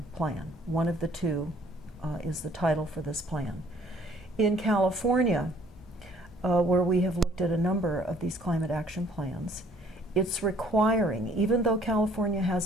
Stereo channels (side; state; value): both; normal; correlation 0.59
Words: plan. One of the two is the title for this plan. In California, where we have looked at a number of these climate action plans, it's requiring, even though California